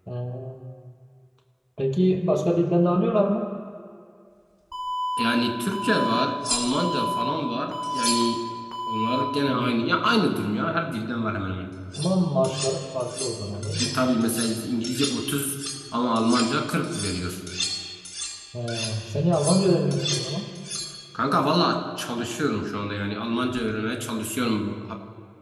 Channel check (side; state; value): both; identical; correlation 1.00